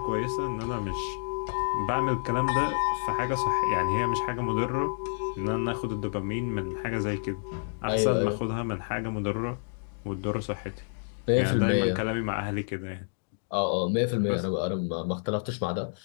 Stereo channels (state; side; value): silent; right; digital silence